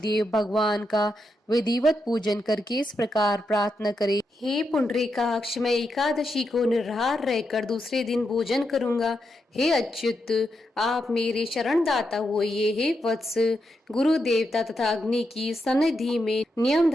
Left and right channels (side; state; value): both; normal; correlation 0.84